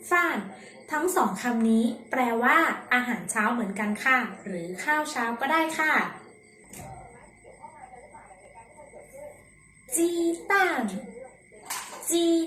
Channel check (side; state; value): both; identical; correlation 1.00